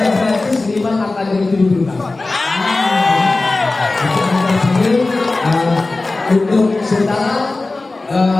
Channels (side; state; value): right; quieter; 3.3 dB